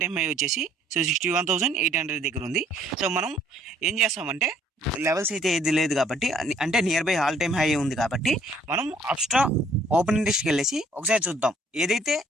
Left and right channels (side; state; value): both; normal; correlation 0.61